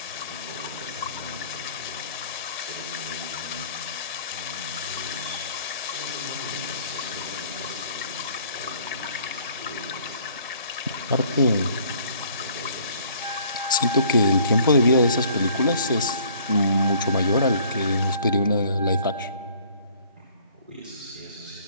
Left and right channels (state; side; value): inverted; both; correlation -0.57